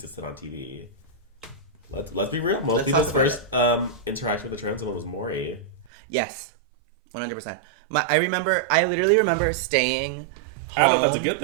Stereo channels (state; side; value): drops out; left; at 5.9 s